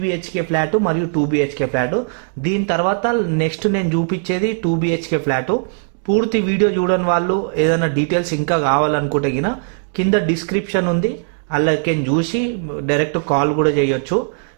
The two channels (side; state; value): left; silent; digital silence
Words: ఫ్లాట్ మరియు 2BHK ఫ్లాట్. దీని తర్వాత నెక్స్ట్ నేను చూపించేది 2BHK ఫ్లాట్. పూర్తి వీడియో చూడని వాళ్ళు ఏదైనా డీటెయిల్స్ ఇంకా కావాలనుకుంటే కింద డిస్క్రిప్షన్ ఉంది, అలాగే చూసి డైరెక్ట్ కాల్ కూడా చేయొచ్చు.